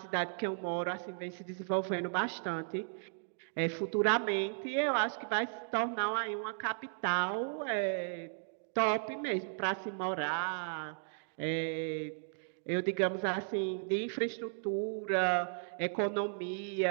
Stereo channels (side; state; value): left; silent; digital silence